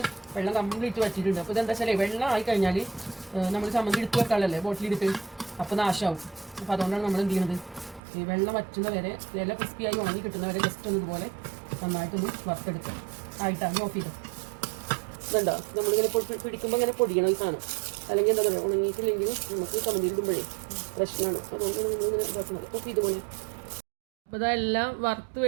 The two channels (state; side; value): drops out; left; at 8.0 s